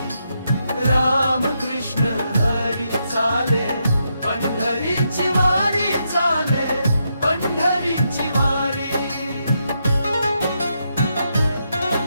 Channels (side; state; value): both; inverted; correlation -0.81